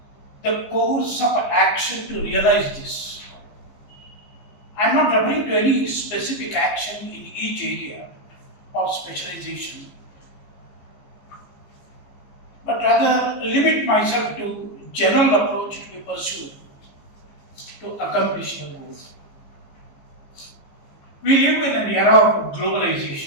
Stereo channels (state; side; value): late; right; 15 ms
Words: the course of action to realize this. I am not referring to any specific action in each area of specialization, but rather limit myself to general approach to be pursued to accomplish your goals. We live in an era of